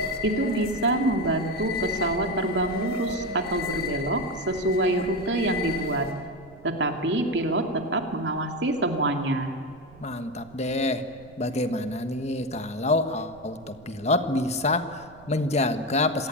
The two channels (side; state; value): right; noise; rumble, 22 dB below the sound